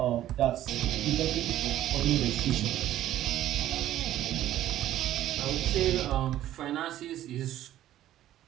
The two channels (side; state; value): left; quieter; 13.0 dB